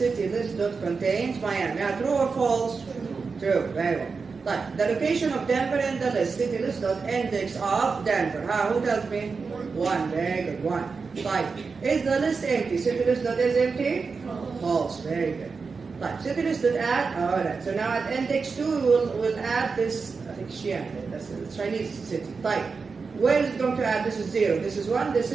list dot contains Miami. True or false? True. Very well. Right. The location of Denver in the list. City list dot index of Denver. Who tells me? 1. Very good. 1. Right. Is the list empty? City list dot is empty? False. Very good. Right. City list dot add. All right. So now at index 2 we'll add this. I think Xi'an. That's the Chinese city. Right. Where is it going to add? This is 0. This is 1. This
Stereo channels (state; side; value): quieter; left; 4.8 dB